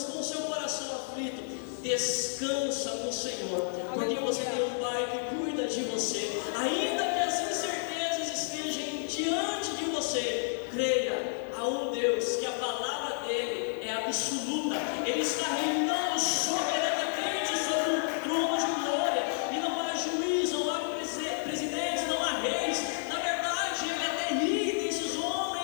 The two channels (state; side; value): silent; right; digital silence